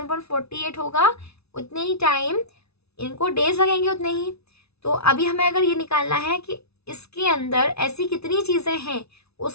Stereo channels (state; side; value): late; right; 0.80 ms